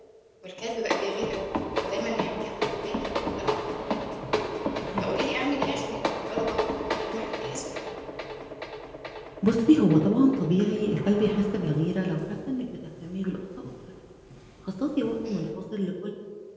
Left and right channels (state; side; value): identical; both; correlation 1.00